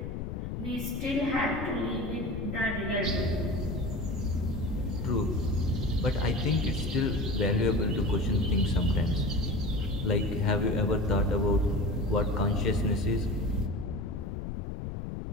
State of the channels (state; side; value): noise; left; rumble, 5 dB below the sound